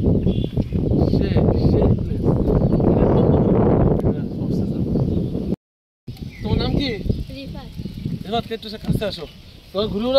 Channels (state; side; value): identical; both; correlation 1.00